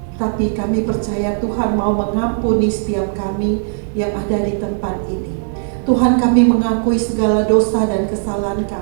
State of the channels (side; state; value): left; silent; digital silence